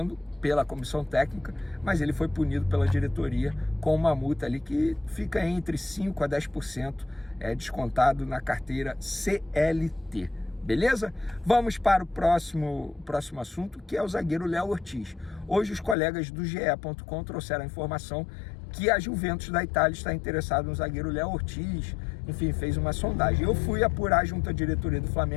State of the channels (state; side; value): drops out; right; at 16.0 s